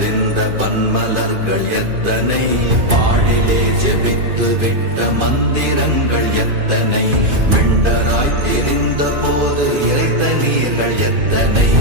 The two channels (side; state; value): left; late; 2.5 ms